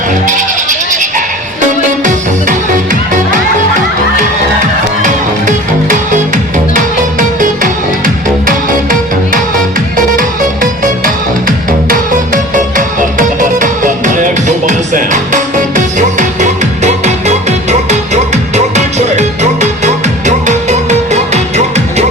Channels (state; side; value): normal; both; correlation 0.41